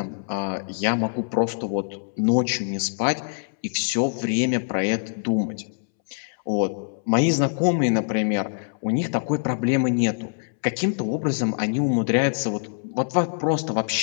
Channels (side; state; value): right; silent; 62 dB below the other